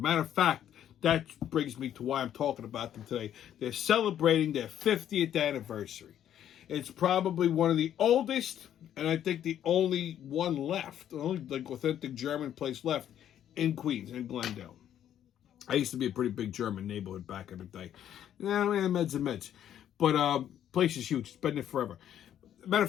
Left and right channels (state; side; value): quieter; right; 10.5 dB